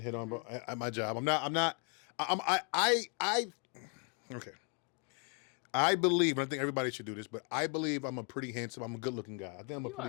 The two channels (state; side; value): quieter; right; 38.0 dB